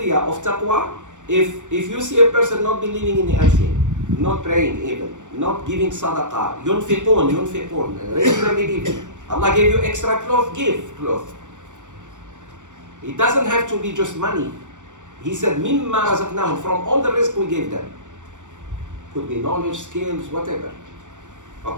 of taqwa, if you see a person not believing in the unseen, not praying even, not giving sadaqah, yunfiqun, regularly giving. Allah gave you extra cloth, give cloth. It doesn't have to be just money. He said, mimma razaqnahum, from all the risk we gave them. Could be knowledge, skills, whatever.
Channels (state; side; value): late; left; 0.85 ms